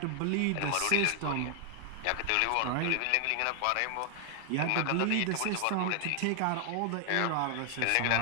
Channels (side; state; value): both; different; correlation 0.00